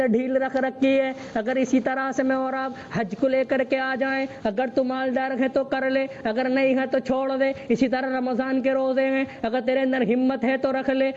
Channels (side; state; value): both; identical; correlation 1.00